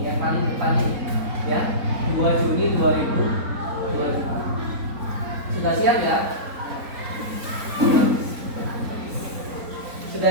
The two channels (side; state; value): left; late; 4.1 ms